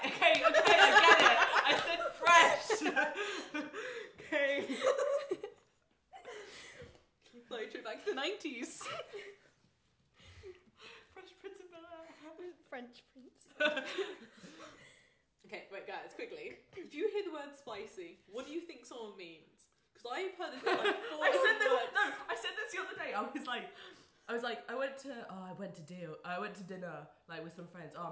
I get it. I said fresh. Okay. Like, trip back to the 90s. Fresh Prince of Bel-Air. French prince. Okay, wait, guys, quickly. If you hear the word spicy, what do you think someone means? Because I've heard this in like 4 words. I said this the other day. I was like, I went to dinner like with some friends.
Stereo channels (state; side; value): identical; both; correlation 1.00